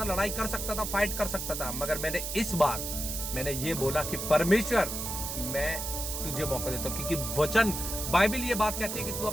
लड़ाई कर सकता था, फाइट कर सकता था, मगर मैंने इस बार मैंने ये बोला कि परमेश्वर, मैं तुझे मौका देता हूं, क्योंकि वचन, बाइबल ये बात कहती है कि तू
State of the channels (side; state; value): right; noise; hiss, 4 dB below the sound